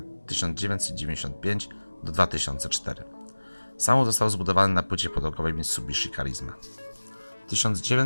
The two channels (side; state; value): both; inverted; correlation -1.00